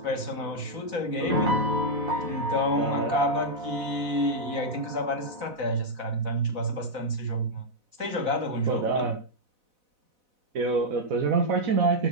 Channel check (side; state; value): left; late; 4.0 ms